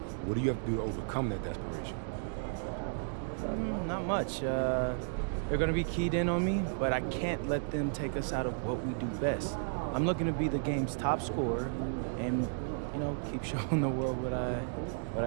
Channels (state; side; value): silent; left; digital silence